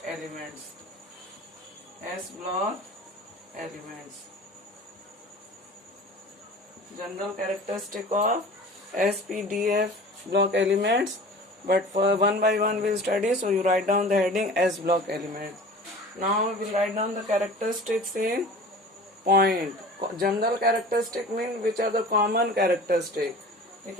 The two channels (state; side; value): normal; both; correlation 0.41